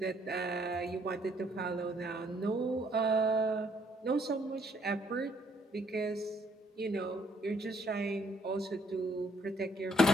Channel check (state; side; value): normal; both; correlation 0.67